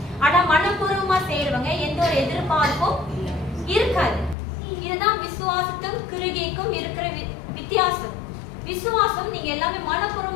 ஆனா மனப்பூர்வமா செய்யறவங்க எந்த ஒரு எதிர்பார்ப்பும் இருக்காது. இதுதான் விசுவாசத்தும் கிருகைக்கும் இருக்கிற வித்தியாசம். விசுவாசம் நீங்க எல்லாமே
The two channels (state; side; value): drops out; right; at 4.4 s